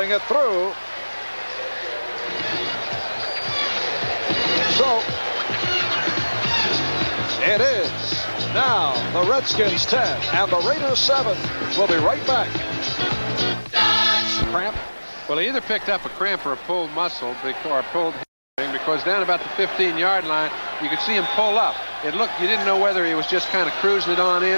it through. So it is now the Redskins 10 and the Raiders 7. We'll be right back. Cramp. Well, he either picked up a cramp or a pulled muscle or a pulled hamstring, because down about the 15-yard line, you could see him pull up. It looked, you didn't know whether he was just kind of cruising it on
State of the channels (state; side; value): inverted; both; correlation -1.00